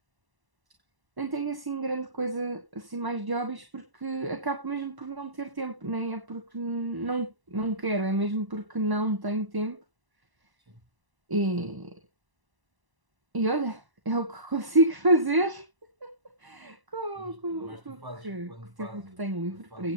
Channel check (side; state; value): left; late; 1.0 ms